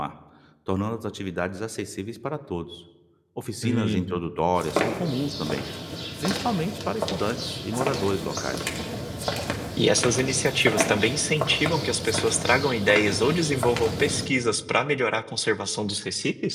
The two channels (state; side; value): identical; both; correlation 1.00